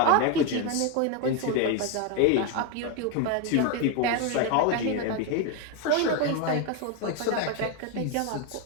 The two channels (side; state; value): both; different; correlation 0.02